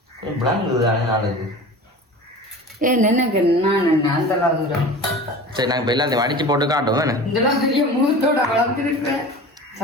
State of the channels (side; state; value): both; normal; correlation 0.37